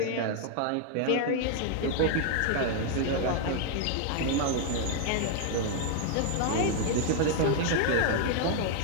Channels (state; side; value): different; both; correlation 0.00